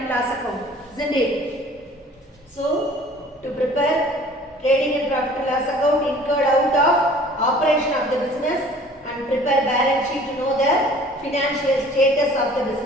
and loss account. Isn't it? So, to prepare trading and profit and loss account incurred out of operation of the business and prepare balance sheet to know the financial status of the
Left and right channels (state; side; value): normal; both; correlation 0.50